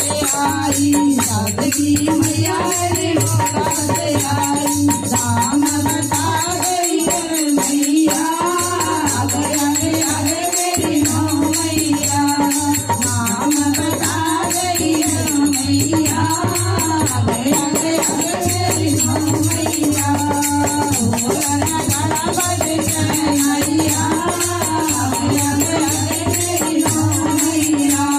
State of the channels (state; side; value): identical; both; correlation 1.00